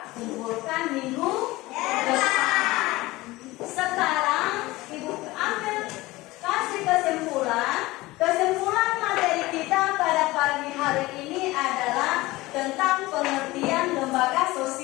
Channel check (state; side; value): quieter; right; 19.7 dB